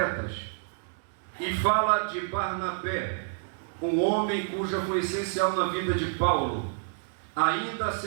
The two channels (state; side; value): silent; left; digital silence